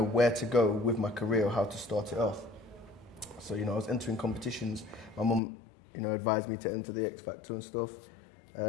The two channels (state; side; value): drops out; right; at 5.4 s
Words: where to go with my career or how to start it off. So, I was entering competitions. My mum, advised me to enter the X Factor and stuff.